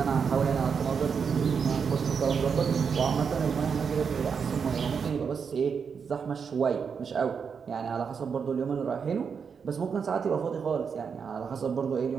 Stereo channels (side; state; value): left; quieter; 6.3 dB